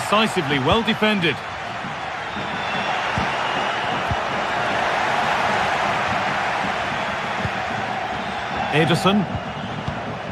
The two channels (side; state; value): both; identical; correlation 1.00